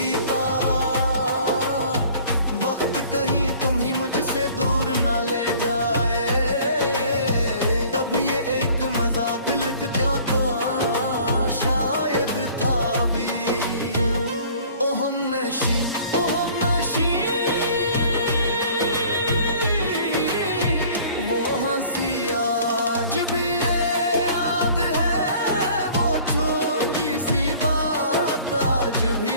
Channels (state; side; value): inverted; both; correlation -0.51